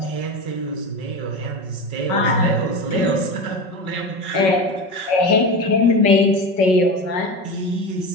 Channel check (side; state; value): right; late; 5.4 ms